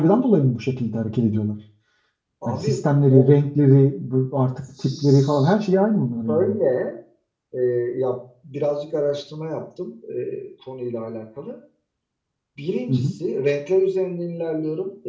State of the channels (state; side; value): identical; both; correlation 1.00